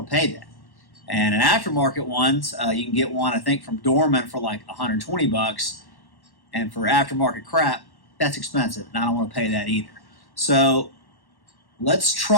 to pay that. And an aftermarket ones, you can get one, I think, from Dorman for like $120. And for aftermarket crap, that's expensive, and I don't want to pay that either. So let's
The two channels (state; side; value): late; right; 1.1 ms